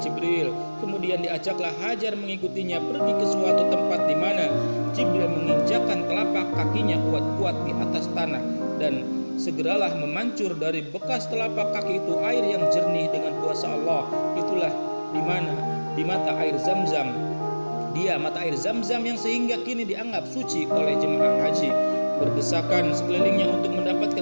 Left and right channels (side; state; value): both; inverted; correlation -1.00